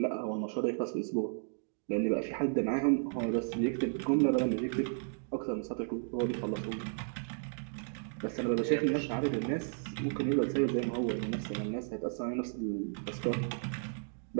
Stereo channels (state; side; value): silent; left; digital silence